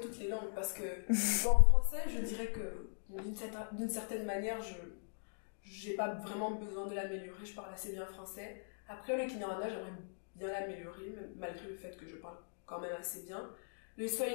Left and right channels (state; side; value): silent; right; digital silence